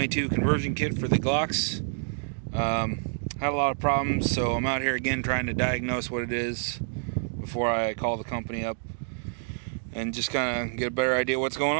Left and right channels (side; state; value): left; silent; digital silence